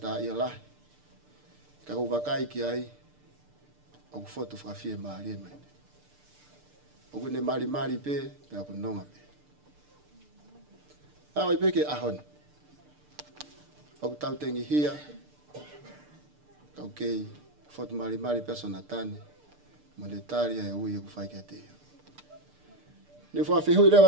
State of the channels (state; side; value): late; left; 6.7 ms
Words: tā i alahi, ka wakai ki ai, o kufotu whakawhie maari e mai. O kune mari pe, pe aku nonga pe. Awa i peke ahoni. O ku tau tengi hia, kau kei, fotu mari pe Sonatane, monetaria e ui e ku whaike te ia. Ni whawhihui